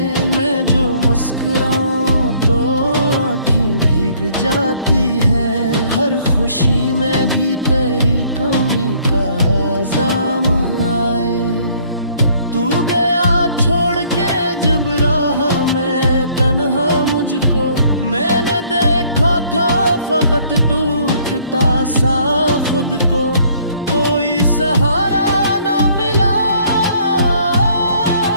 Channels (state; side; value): inverted; both; correlation -0.61